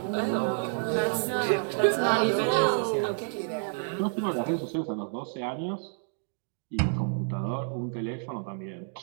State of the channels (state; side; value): silent; left; 58 dB below the other